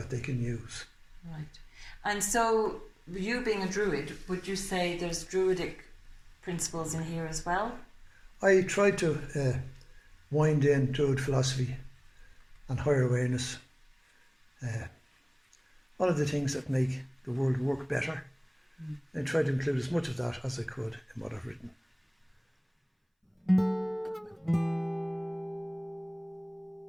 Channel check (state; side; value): identical; both; correlation 1.00